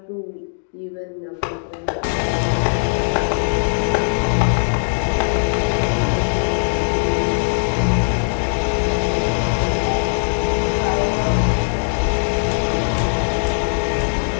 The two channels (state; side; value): silent; right; digital silence